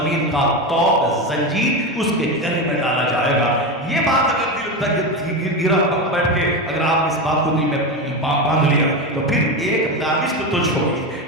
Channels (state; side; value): normal; both; correlation 0.18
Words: کا توق زنجیر اس کے گلے میں ڈالا جائے گا۔ یہ بات اگر دل تک گرا بیٹھ کے اگر آپ اس بات کو دل میں باندھ لیا تو پھر 1 دانش تو چھوڑی،